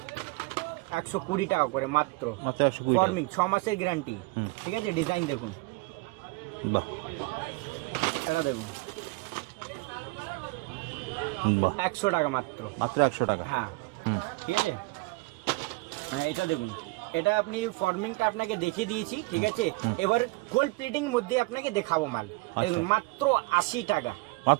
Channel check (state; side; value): quieter; left; 25.1 dB